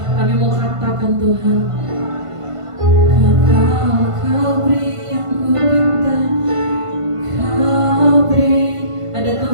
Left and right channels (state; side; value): late; left; 1.5 ms